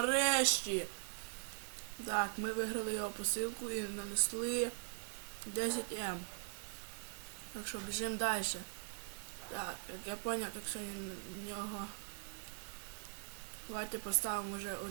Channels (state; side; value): silent; left; digital silence